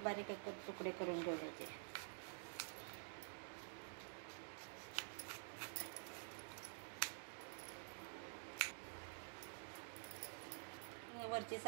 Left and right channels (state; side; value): silent; left; digital silence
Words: बारीक एक तुकडे करून घेऊयाचे। वरची